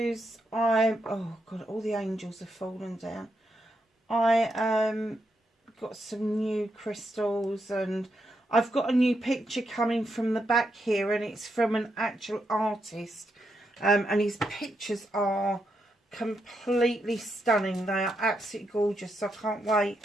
oh god, all the angels have fallen down. I got some new crystals, and I've got a new picture coming from the back here, and it's from an actual artist, and his pictures are completely stunning. They are absolutely gorgeous, so I can't wait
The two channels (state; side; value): normal; both; correlation 0.82